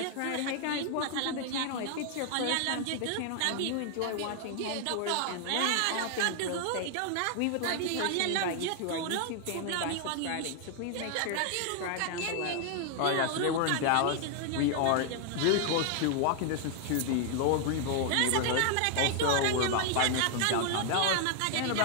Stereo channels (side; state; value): both; different; correlation 0.00